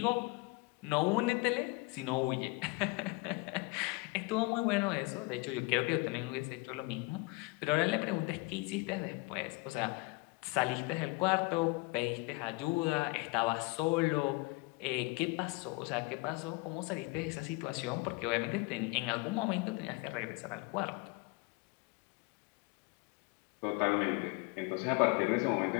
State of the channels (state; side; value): quieter; right; 25.8 dB